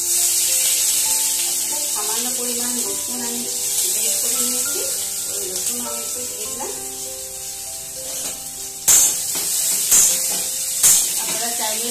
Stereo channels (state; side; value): identical; both; correlation 1.00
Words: সামান্য পরিমাণ রসুন আমি বের করে নিয়েছি, ওই রসুন আমি একটু দিয়ে দিলাম। আপনারা চাইলে